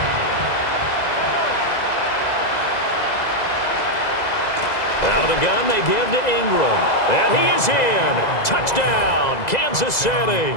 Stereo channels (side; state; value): right; late; 2.0 ms